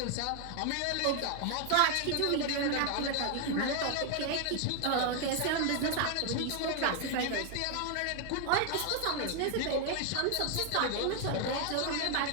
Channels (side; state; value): both; different; correlation 0.00